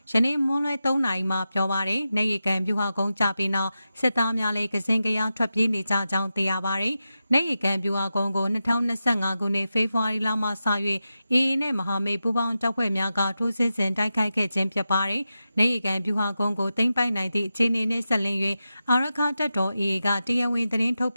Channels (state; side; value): inverted; both; correlation -0.91